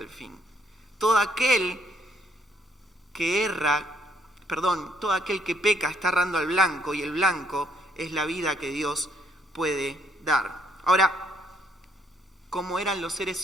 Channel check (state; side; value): normal; both; correlation 0.69